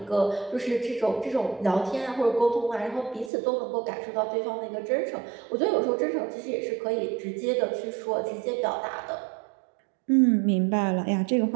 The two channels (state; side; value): drops out; left; at 3.3 s